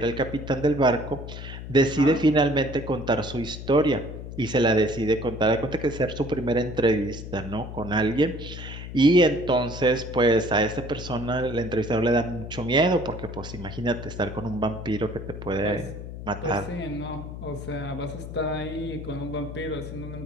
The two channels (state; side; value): noise; left; hum, 10 dB below the sound